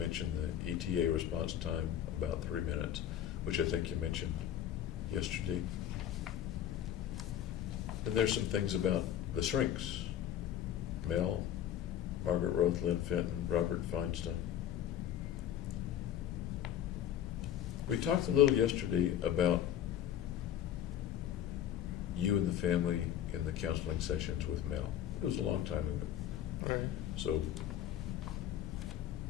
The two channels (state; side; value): quieter; right; 10.7 dB